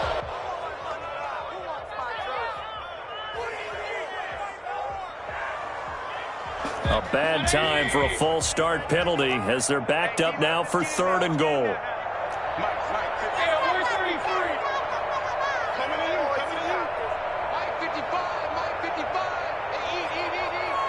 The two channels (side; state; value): both; identical; correlation 1.00